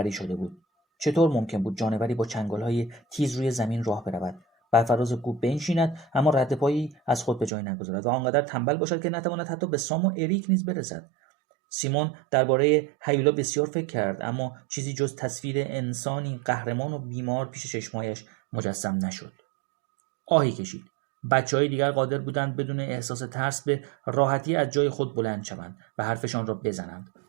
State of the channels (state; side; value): drops out; left; at 7.5 s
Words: شده بود. چطور ممکن بود جانوری با چنگال‌های تیز روی زمین راه برود، بر فراز کوه بنشیند اما رد پایی از خود به جای نگذارد و آنقدر تنبل باشد که نتواند حتی به سام و اریک نیز برسد؟ سیمون درباره هیولا بسیار فکر کرد، اما چیزی جز تصویر انسانی قهرمان و بیمار پیش چشمایش مجسم نشد. آهی کشید. بچه‌های دیگر قادر بودند بدون احساس ترس به راحتی از جای خود بلند شوند و حرفشان را بزنند.